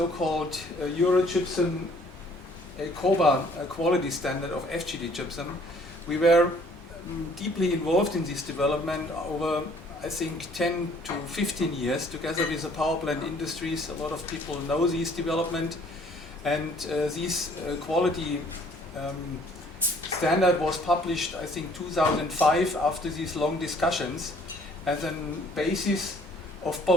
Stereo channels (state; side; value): normal; both; correlation 0.59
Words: Eurogypsum COBA quality standard of FGD gypsum. We were deeply involved in this development over, I think, 10 to 15 years together with the power plant industries. A lot of people know this development, and this quality standard was published, I think, 2005 after these long discussions as a basis of